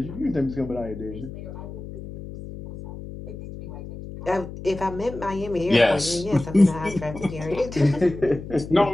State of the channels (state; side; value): noise; left; hum, 11 dB below the sound